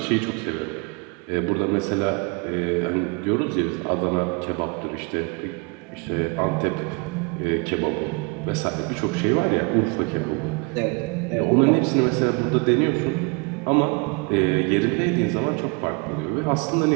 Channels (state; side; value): quieter; left; 31.4 dB